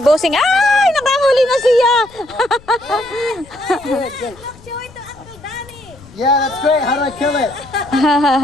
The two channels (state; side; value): noise; left; rumble, 25 dB below the sound